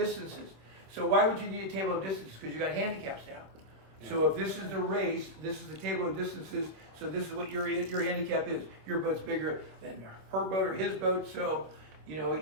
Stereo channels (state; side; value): late; left; 26 ms